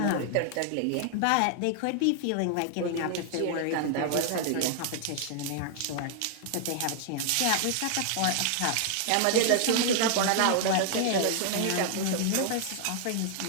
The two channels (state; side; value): different; both; correlation 0.00